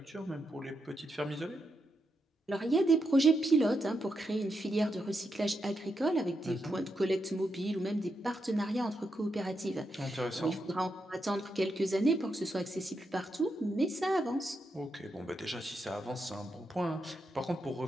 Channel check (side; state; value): both; normal; correlation 0.84